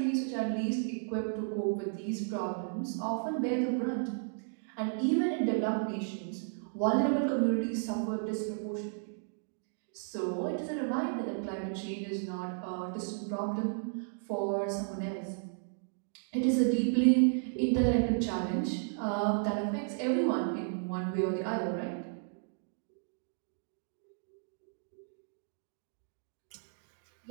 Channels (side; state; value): left; silent; digital silence